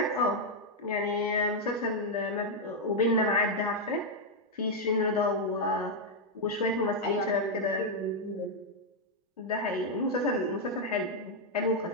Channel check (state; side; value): normal; both; correlation -0.01